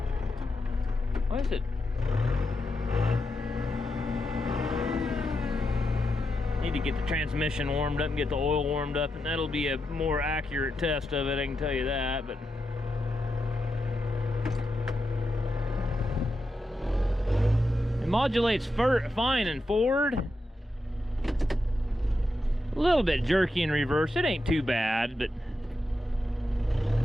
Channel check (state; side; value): normal; both; correlation 0.86